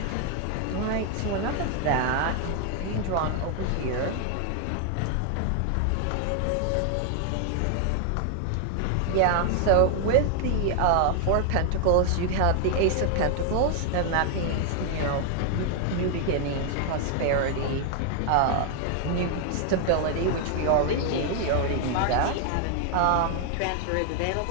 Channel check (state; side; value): different; both; correlation 0.00